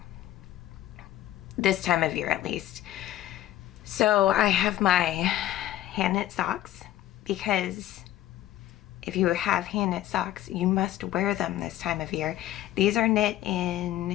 this time of year at least. So I have my hand knit socks, because if you have hand knit socks, you must wear them this time of year. These are knit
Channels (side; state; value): right; quieter; 13.5 dB